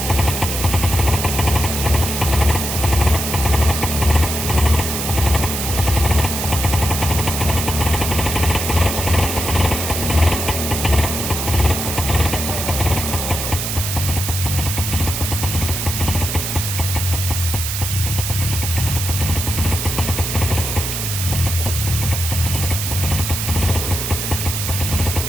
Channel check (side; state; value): right; noise; hiss, 3 dB below the sound